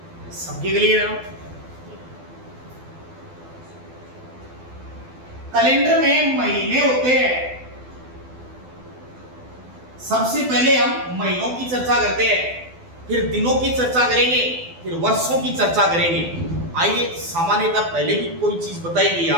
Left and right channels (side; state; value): left; late; 12 ms